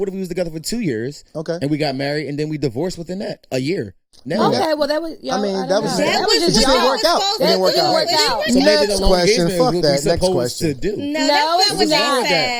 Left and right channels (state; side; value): identical; both; correlation 1.00